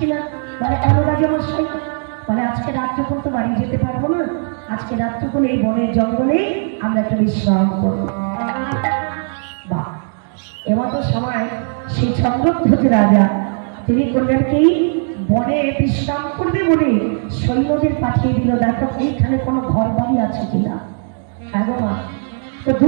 বলে কেন রাজা মশাই? বলে আজকে রাত্রিক্ষণ তো বাড়ি যেতে পারবো না, আজকে রাত্রিক্ষণ এই বনের জঙ্গলে আমরা একটা বিশ্রাম করবো। বাহ, এমতো সময় সেই চন্দ্রধ্বজ রাজা তিনি করলেন কি, বনে বিশ্রাম করবে বলে সৈন্যদের পাঠিয়ে দিল, দেখো এইখানে কোনো ঘর বাড়ি আছে কিনা। হ্যাঁ গো মা, তো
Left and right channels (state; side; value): silent; left; 58 dB below the other